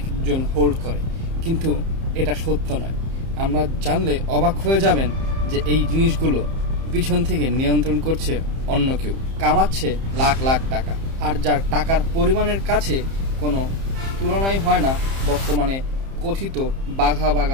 হোল্ড করে, কিন্তু এটা সত্য নয়। আমরা জানলে অবাক হয়ে যাবেন যে এই জিনিসগুলো পিছন থেকে নিয়ন্ত্রণ করছে অন্য কেউ, কামাচ্ছে লাখ লাখ টাকা, আর যার টাকার পরিমাণের কাছে কোনো তুলনাই হয় না বর্তমানে কথিত বাঘা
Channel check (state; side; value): late; left; 30 ms